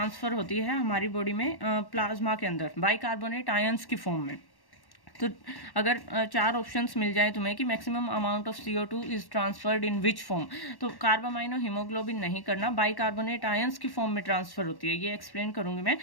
होती है हमारी बॉडी में प्लाज्मा के अंदर बाइकार्बोनेट आयंस की फॉर्म में। तो अगर चार ऑप्शंस मिल जाए तुम्हें कि maximum amount of CO2 is transferred in which form, तो कार्ब अमाइनो हीमोग्लोबिन नहीं करना, बाइकार्बोनेट आयंस की फॉर्म में ट्रांसफर होती है। ये एक्सप्लेन करूंगी मैं।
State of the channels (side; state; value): right; late; 1.1 ms